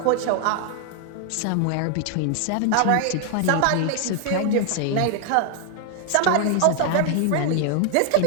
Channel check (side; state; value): both; different; correlation 0.00